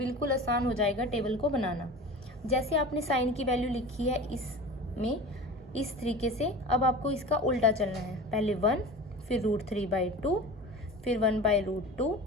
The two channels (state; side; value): normal; both; correlation 0.35